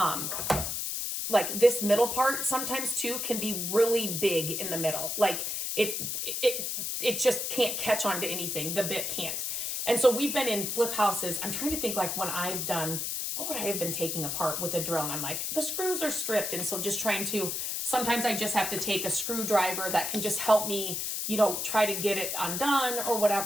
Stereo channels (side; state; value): left; noise; hiss, 2 dB below the sound